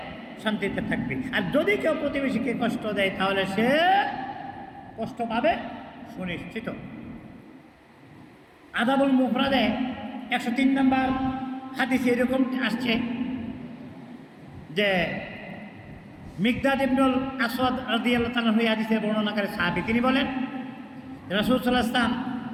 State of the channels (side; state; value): both; identical; correlation 1.00